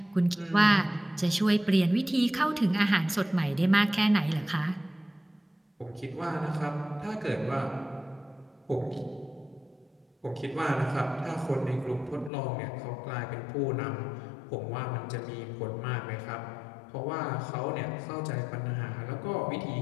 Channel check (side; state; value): right; drops out; at 12.3 s